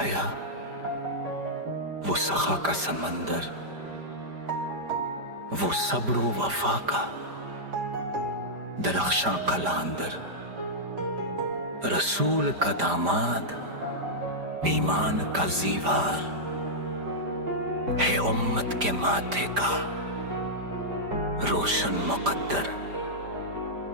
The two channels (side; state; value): left; late; 5.0 ms